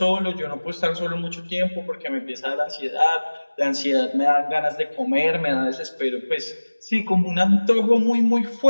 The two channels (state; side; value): inverted; both; correlation -1.00